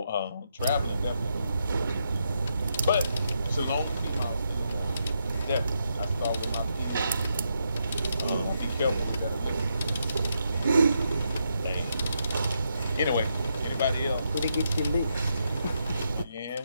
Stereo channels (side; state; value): both; inverted; correlation -0.81